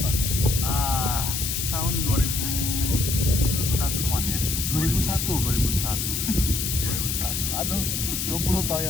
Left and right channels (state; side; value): noise; left; hiss, 1 dB below the sound